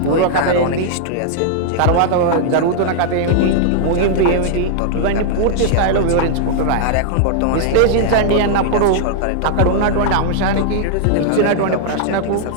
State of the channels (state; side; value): different; both; correlation -0.01